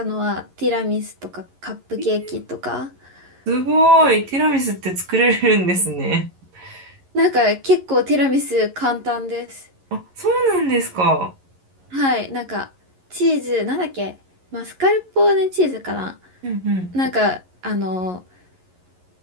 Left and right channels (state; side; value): late; left; 11 ms